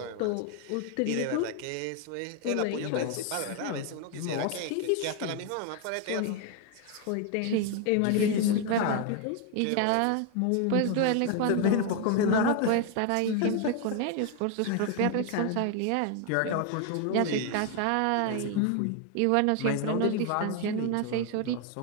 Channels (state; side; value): different; both; correlation 0.01